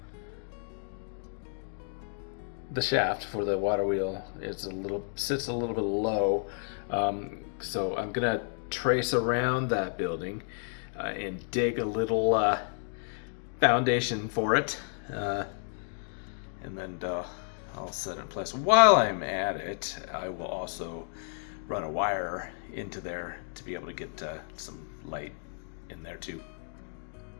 shaft for the water wheel sits a little bit low. So I'm gonna trace around that building and dig a little foundation for it. And then I'll set it in place. While I'm at it, I will also run a wire into there to be able to get some light in there too.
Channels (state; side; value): silent; right; 57 dB below the other